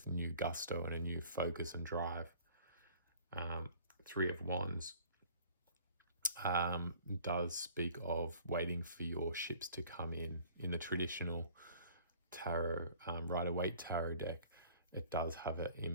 new gusto and a new focus and drive. Three of Wands does speak of waiting for your ships to come in the traditional tarot, Rider-Waite tarot deck. it does have an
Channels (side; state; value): both; inverted; correlation -0.51